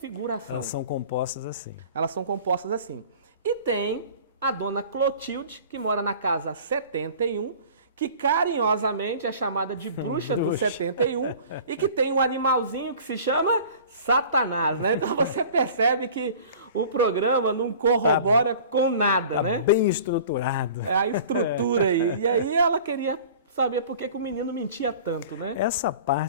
Elas são compostas assim. Elas são compostas assim. E tem a dona Clotilde, que mora na casa 71, que carinhosamente é chamada de bruxa do 71 e que tem um animalzinho que se chama Satanás, né? Então você percebe que o programa não corrobora com nada, né? Bem estruturado. É a estrutura aí. E aí ela queria saber por que o menino mentia tanto, né? Essa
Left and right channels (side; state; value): both; inverted; correlation -0.44